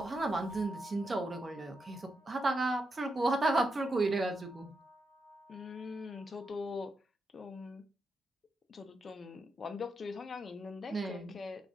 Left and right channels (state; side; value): normal; both; correlation 0.84